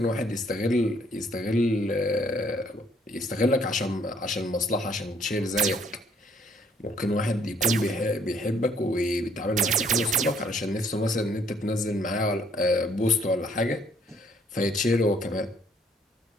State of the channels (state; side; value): normal; both; correlation 0.64